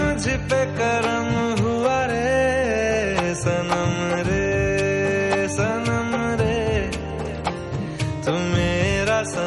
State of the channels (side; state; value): both; identical; correlation 1.00